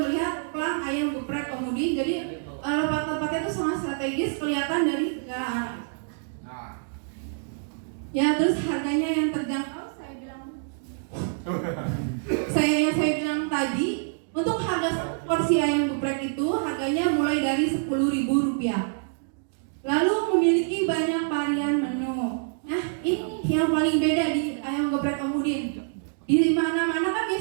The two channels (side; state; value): left; silent; digital silence